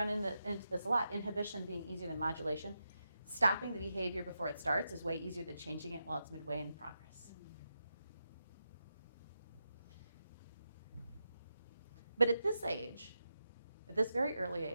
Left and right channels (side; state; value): both; inverted; correlation -0.87